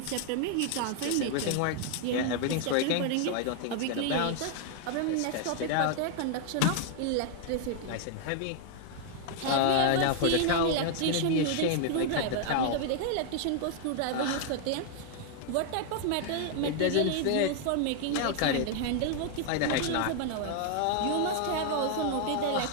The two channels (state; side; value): different; both; correlation 0.00